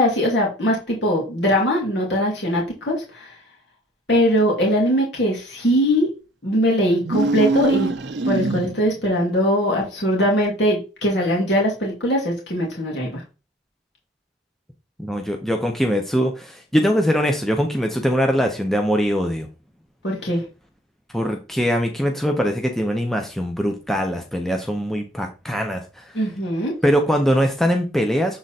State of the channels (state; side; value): normal; both; correlation 0.57